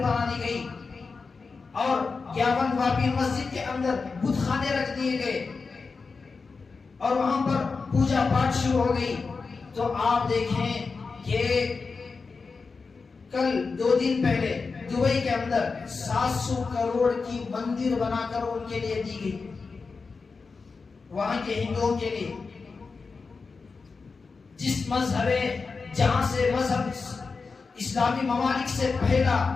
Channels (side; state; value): right; quieter; 4.6 dB